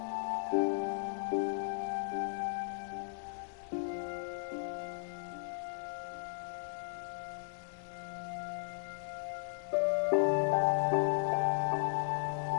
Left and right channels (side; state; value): right; silent; 54 dB below the other